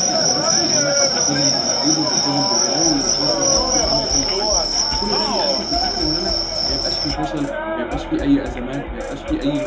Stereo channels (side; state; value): both; identical; correlation 1.00